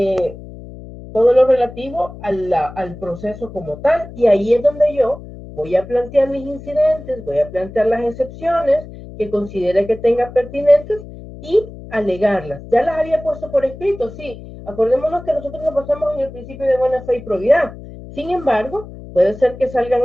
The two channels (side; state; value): left; noise; hum, 15 dB below the sound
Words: Todo lo relativo al proceso como tal. Y ahí es donde yo voy a plantear mis incidentes, voy a plantear las excepciones que considere que tenga pertinentes y alegarlas. Ya las había puesto por escrito, sí. Acordémonos que nosotros nos basamos en el principio de buena fe y probidad. Sin embargo, puede ser que